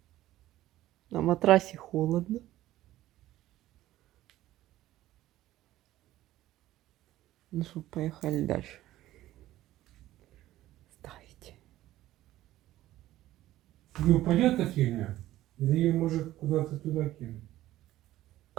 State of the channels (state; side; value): quieter; left; 14.9 dB